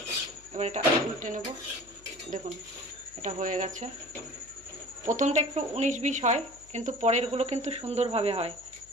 এবার এটা উল্টে নেব। দেখুন এটা হয়ে গেছে। প্রথমটা একটু 19-20 হয়, কিন্তু পরেরগুলো কিন্তু সুন্দরভাবে হয়।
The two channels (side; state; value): left; noise; hum, 25 dB below the sound